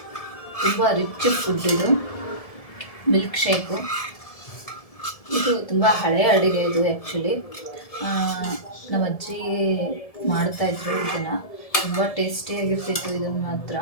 ತುಂಬ ರಿಚ್ ಫುಡ್ ಇದು ಮಿಲ್ಕ್ ಶೇಕು. ಇದು ತುಂಬ ಹಳೆಯ ಅಡುಗೆ ಇದು. ಆ್ಯಕ್ಚುಲಿ ನಮ್ಮ ಅಜ್ಜಿ ಮಾಡ್ತಾಯಿದ್ರು ಇದನ್ನು. ತುಂಬ ಟೇಸ್ಟಿಯಾಗಿರ್ತಿತ್ತು ಇದನ್ನು ಮಾತ್ರ.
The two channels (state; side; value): late; right; 1.7 ms